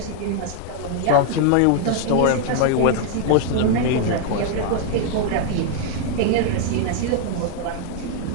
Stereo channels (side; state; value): both; different; correlation 0.00